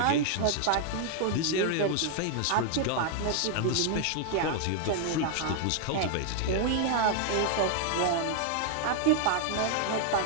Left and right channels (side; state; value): both; different; correlation 0.00